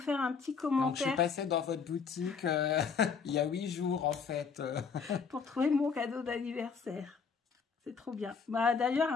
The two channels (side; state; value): right; quieter; 5.8 dB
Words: un petit commentaire. Donc, je suis passée dans votre boutique il y a 8 jours, en fait. Pour trouver mon cadeau d'anniversaire. C'est trop bien. D'ailleurs,